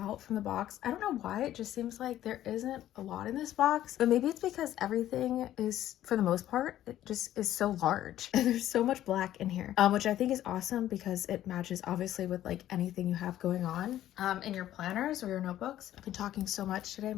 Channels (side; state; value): right; quieter; 12.7 dB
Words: from the box. I don't know why, it just seems like there isn't a lot in this box, but maybe it's because everything is, for the most part, it just is so large and there's so much black in here, which I think is awesome because it matches obviously with like anything you have going on in your planners or your notebooks. I've been talking so much today,